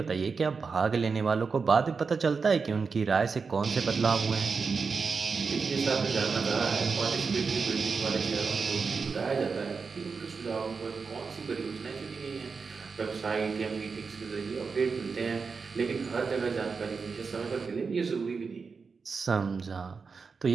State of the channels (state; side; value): quieter; left; 5.0 dB